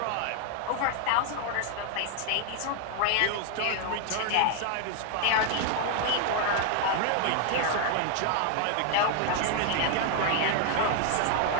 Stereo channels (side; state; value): both; different; correlation 0.00